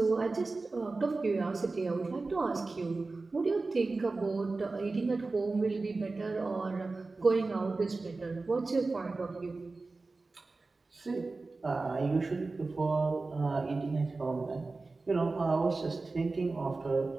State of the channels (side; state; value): left; quieter; 3.6 dB